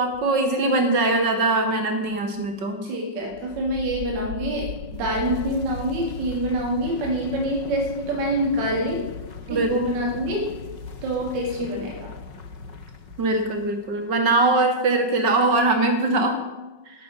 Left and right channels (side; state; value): left; late; 5.4 ms